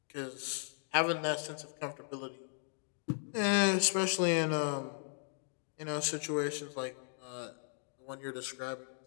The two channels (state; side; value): silent; right; 53 dB below the other